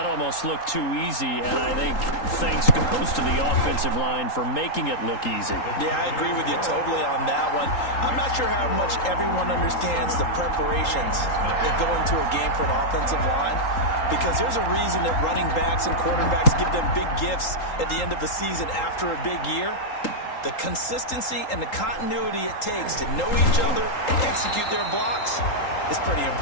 almost looked too easy, and I think thanks goes to the offensive line for making it look easy. Yeah, I agree with you totally on that one. I'm not sure how much everyone understands the preparations that go into a game for an offensive line, because there's a reason that running backs and quarterbacks give them big gifts at the end of the season after a big year. The consistency and the continuity it takes to know each other and execute their blocks is pretty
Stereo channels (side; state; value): right; late; 3.8 ms